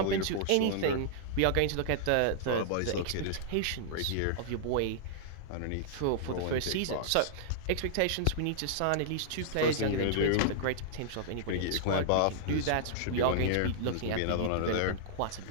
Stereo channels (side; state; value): both; different; correlation -0.01